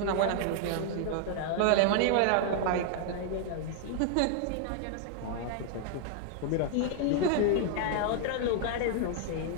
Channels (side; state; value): both; different; correlation 0.00